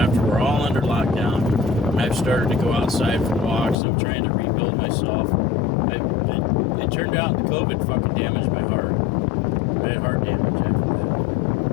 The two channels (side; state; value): right; drops out; at 3.8 s